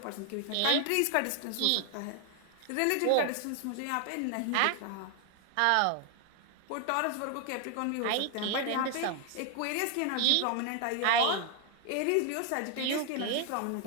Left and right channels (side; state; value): both; different; correlation 0.00